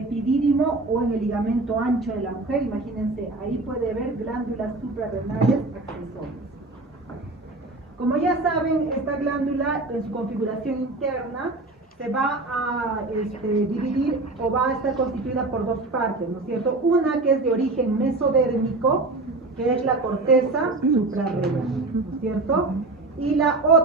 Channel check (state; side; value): quieter; left; 3.2 dB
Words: o en el ligamento ancho de la mujer. Imagínense, ahí puede haber glándulas suprarrenales accesorias. Como ya saben, esta glándula en su configuración interna se va a dividir o va a estar constituida por dos partes, ¿no es cierto? Una que es de origen mesodérmico, que es la corteza suprarrenal, ¿no es cierto? Y la